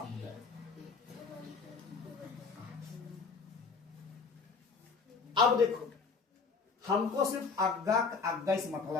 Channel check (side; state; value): right; quieter; 4.8 dB